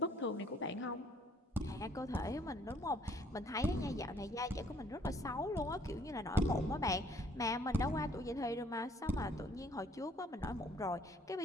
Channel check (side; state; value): both; normal; correlation 0.62